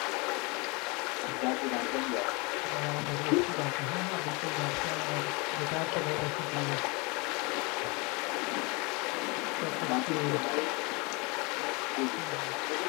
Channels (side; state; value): right; quieter; 28.2 dB